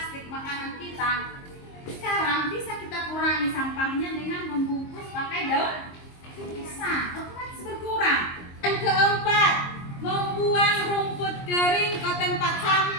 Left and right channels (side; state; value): right; late; 22 ms